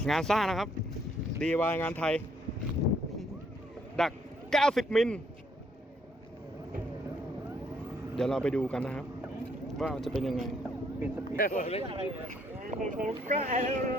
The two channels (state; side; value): normal; both; correlation 0.69